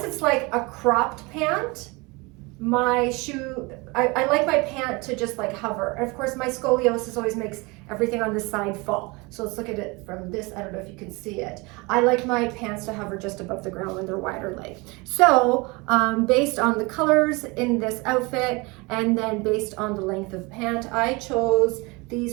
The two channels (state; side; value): quieter; left; 26.1 dB